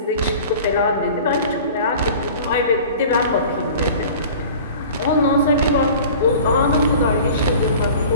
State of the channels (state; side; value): inverted; both; correlation -0.42